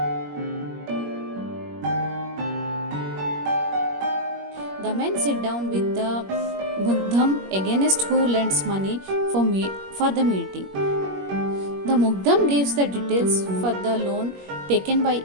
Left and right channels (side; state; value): left; late; 21 ms